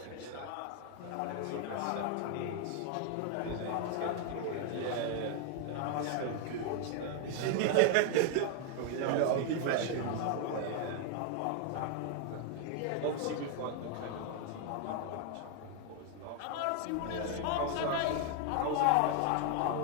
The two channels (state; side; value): different; both; correlation 0.00